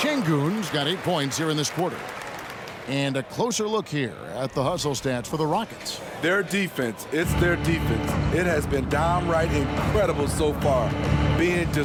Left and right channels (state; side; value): identical; both; correlation 1.00